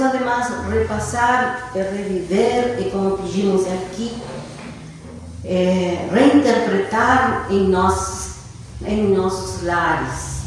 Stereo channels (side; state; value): both; identical; correlation 1.00